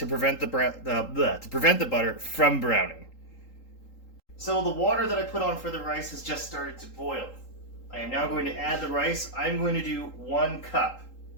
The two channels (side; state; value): right; late; 3.8 ms